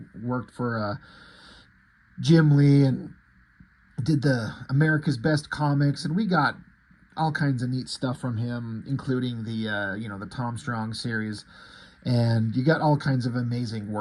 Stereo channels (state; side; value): identical; both; correlation 1.00